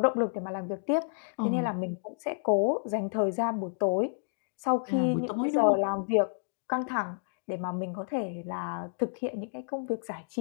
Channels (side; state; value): right; silent; digital silence